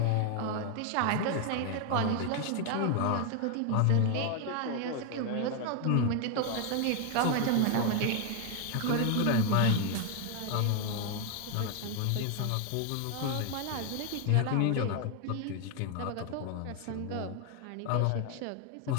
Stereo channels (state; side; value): different; both; correlation 0.01